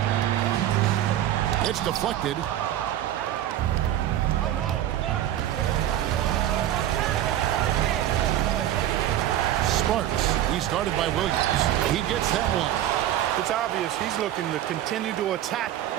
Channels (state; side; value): quieter; left; 12.3 dB